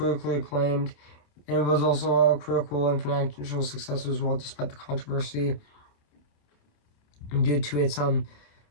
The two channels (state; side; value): late; right; 27 ms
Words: acclaimed, and it was also a critical and financial success as well, despite the controversy due to its